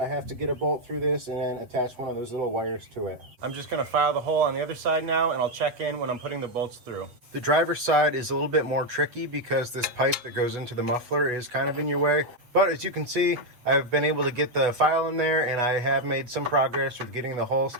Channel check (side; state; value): left; late; 8.2 ms